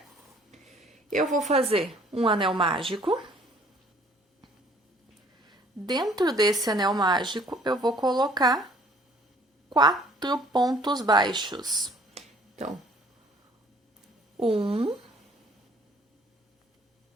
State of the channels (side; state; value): both; normal; correlation 0.57